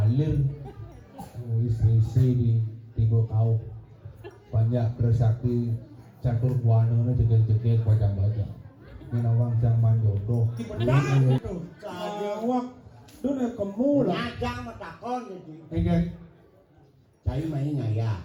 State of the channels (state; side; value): identical; both; correlation 1.00